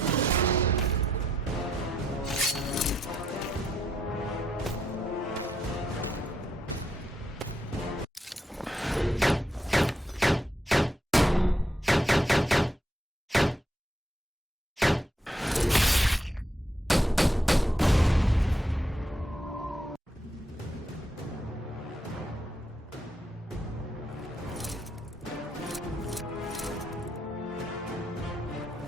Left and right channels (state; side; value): normal; both; correlation 0.79